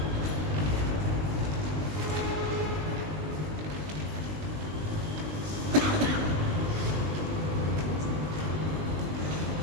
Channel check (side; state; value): left; late; 20 ms